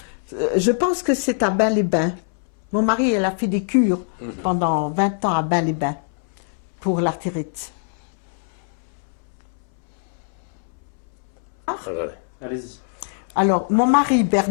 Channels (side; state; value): right; silent; 61 dB below the other